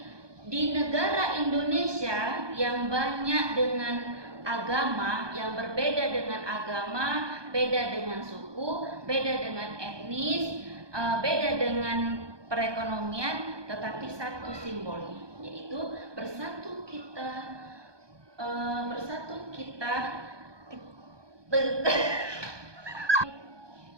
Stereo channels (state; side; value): late; left; 1.2 ms